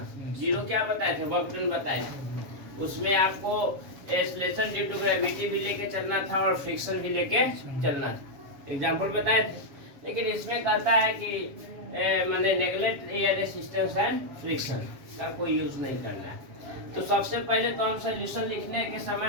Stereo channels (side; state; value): left; late; 7.2 ms